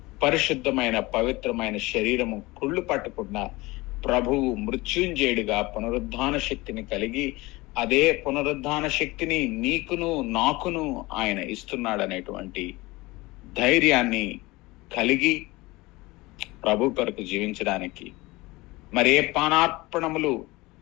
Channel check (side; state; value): right; quieter; 21.7 dB